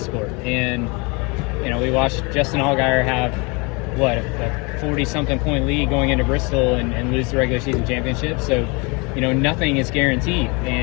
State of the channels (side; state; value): right; quieter; 29.1 dB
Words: And, we watched Justin Allgaier have, a 40-something point lead going into Bristol and lose the regular season championship. So, nothing is guaranteed